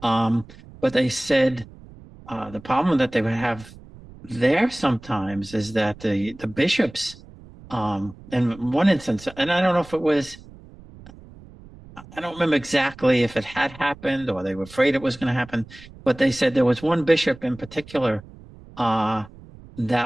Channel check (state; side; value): noise; right; rumble, 20 dB below the sound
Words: Um, but they said the problem that they would have there sometimes is that the bishops, in one instance, and I don't know if it was, I don't remember exactly if it had happened or they were afraid it was going to happen, but they said there was one bishop in particular uh,